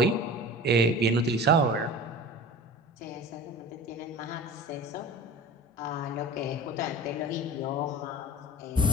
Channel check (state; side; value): normal; both; correlation 0.37